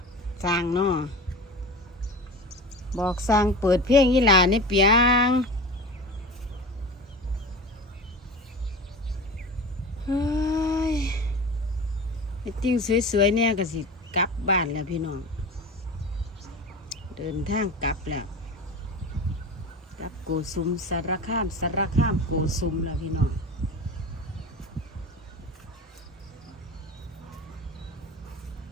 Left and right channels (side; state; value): both; normal; correlation 0.31